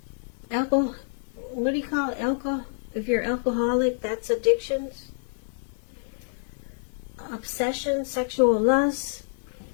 what do you call it? Alcohol? If you're alcoholic, that's addictions. Obsession, sexual lust.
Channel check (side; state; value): right; silent; 60 dB below the other